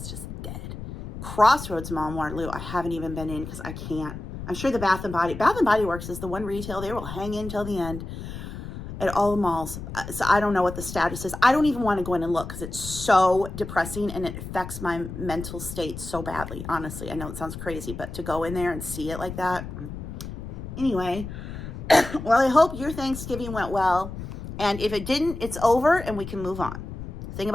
just dead. Crossroads Mall in Waterloo, I haven't even been in because I can't. I'm sure the Bath & Body Works is the one retail they will hang in till the end at all the malls. So I don't know what the status is. I don't even want to go in and look because it's so depressing and it affects my mental state so badly. Honestly, I know it sounds crazy, but to go in there and see it like that. Anyway, well, I hope your Thanksgiving went well. And if it didn't, it's over and we can move on. The thing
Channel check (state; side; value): noise; left; rumble, 9 dB below the sound